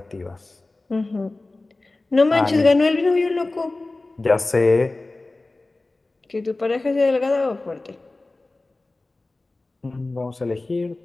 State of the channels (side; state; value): right; quieter; 3.1 dB